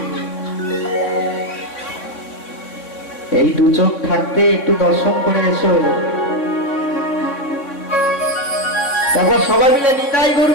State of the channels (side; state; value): right; late; 3.6 ms